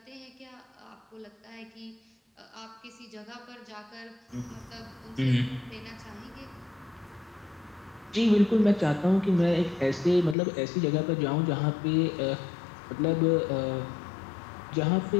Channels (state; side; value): drops out; right; at 10.4 s